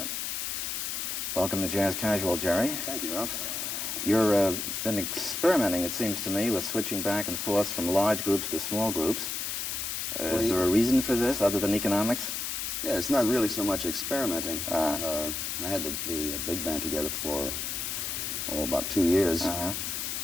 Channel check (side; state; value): left; noise; hiss, 3 dB below the sound